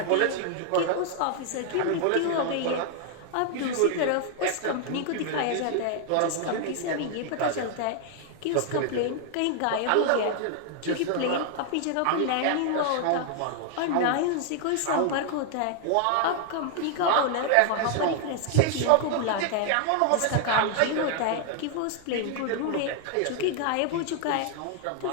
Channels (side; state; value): both; different; correlation 0.00